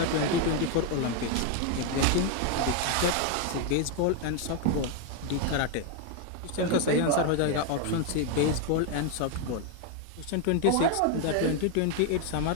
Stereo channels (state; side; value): different; both; correlation 0.01